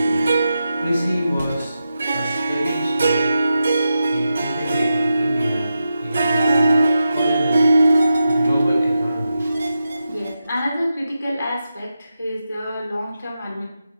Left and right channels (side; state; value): both; inverted; correlation -0.89